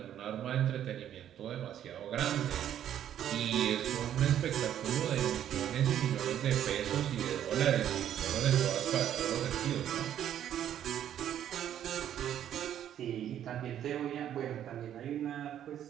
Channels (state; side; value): quieter; left; 10.5 dB